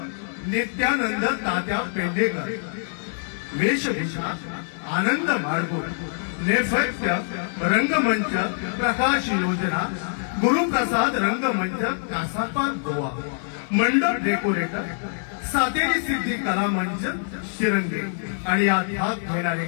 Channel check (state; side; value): silent; right; digital silence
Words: नित्यानंद तात्या पेंढेकर, वेशभूषा आनंद माडगुळ, नेपथ्य रंगमंच प्रकाश योजना गुरुप्रसाद रंगमंच कासापा गोवा, मंडप डेकोरेटर सातेरी सिद्धी कला मंच शिरंगे आणि यात भाग घेणारे